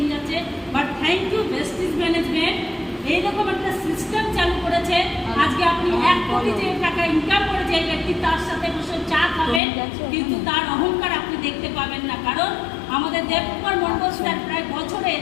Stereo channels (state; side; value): drops out; right; at 9.6 s